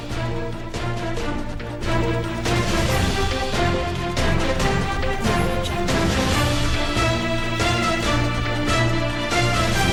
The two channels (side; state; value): both; identical; correlation 1.00